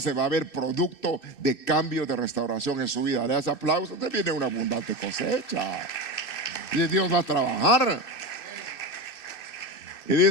va a haber producto de cambio, de restauración en su vida. Le das aplausos, te viene una abundante cosecha. Y Dios va a trabajar. Y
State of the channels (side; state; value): right; late; 2.6 ms